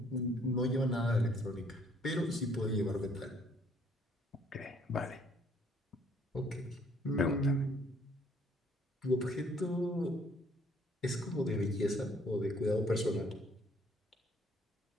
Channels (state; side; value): normal; both; correlation 0.63